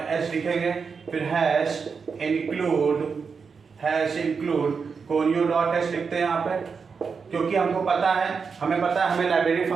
लिखेंगे, फिर include conio.h लिखते हैं यहाँ पे, क्योंकि हमें पता है हमें लाइब्रेरी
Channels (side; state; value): left; quieter; 5.5 dB